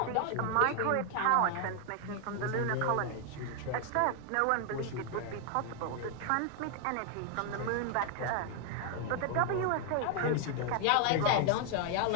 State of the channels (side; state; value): both; different; correlation 0.01